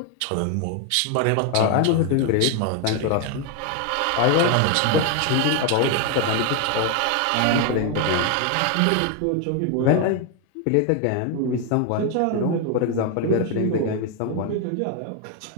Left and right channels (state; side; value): different; both; correlation 0.01